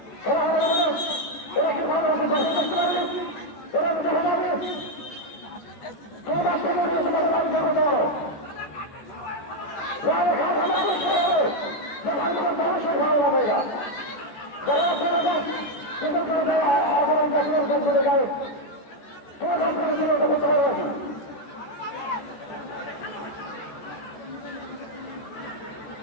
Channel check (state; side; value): late; right; 14 ms